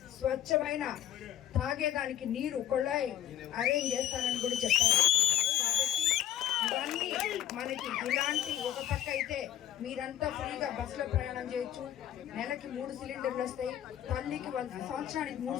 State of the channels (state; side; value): quieter; right; 12.0 dB